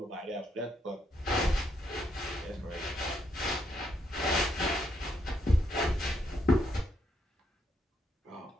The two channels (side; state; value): both; normal; correlation 0.77